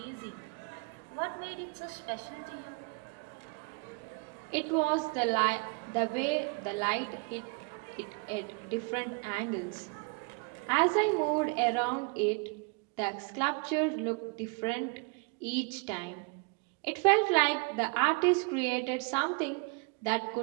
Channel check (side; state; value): left; quieter; 32.9 dB